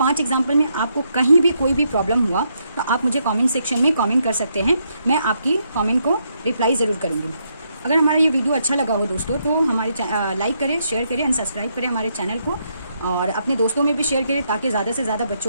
एग्जाम्पल में आपको कहीं भी कोई भी प्रॉब्लम हुआ, तो आप मुझे कमेंट सेक्शन में कमेंट कर सकते हैं, मैं आपकी कमेंट को रिप्लाई ज़रूर करूँगी। अगर हमारा ये वीडियो अच्छा लगा हो दोस्तों, तो हमारे लाइक करें, शेयर करें एंड सब्सक्राइब करें हमारे चैनल को, और अपने दोस्तों में भी शेयर करें, ताकि ज़्यादा से ज़्यादा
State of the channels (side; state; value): both; inverted; correlation -0.77